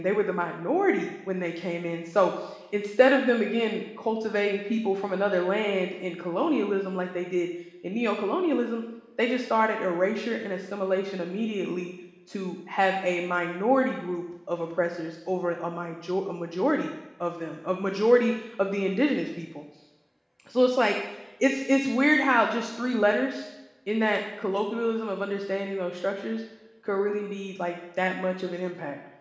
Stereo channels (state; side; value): identical; both; correlation 1.00